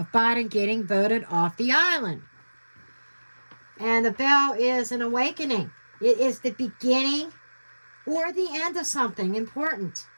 Biden getting voted off the island. And the bell is an awakening. It is the beginning or the end of something important.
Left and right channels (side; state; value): both; inverted; correlation -1.00